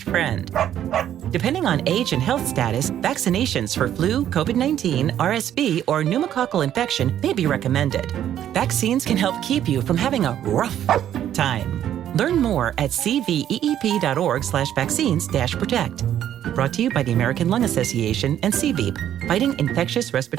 friend. Depending on age and health status, vaccinations for flu, COVID-19, RSV, or pneumococcal infection may be recommended. Vaccines can help keep you from having a rough time. Learn more at cveep.org/vaccines-protect. Brought to you by the American Lung Association and CVEEP, fighting infectious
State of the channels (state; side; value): quieter; left; 10.9 dB